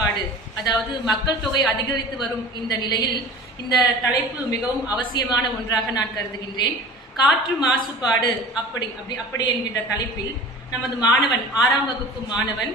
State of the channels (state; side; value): normal; both; correlation 0.39